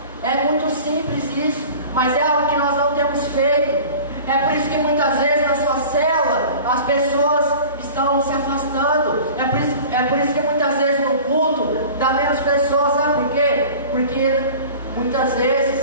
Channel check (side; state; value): both; inverted; correlation -0.40